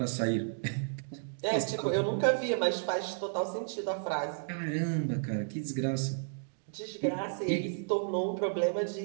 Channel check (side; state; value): left; silent; digital silence